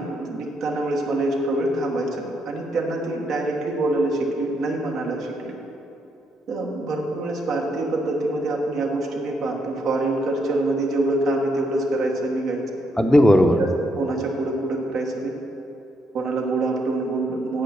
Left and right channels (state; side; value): normal; both; correlation 0.77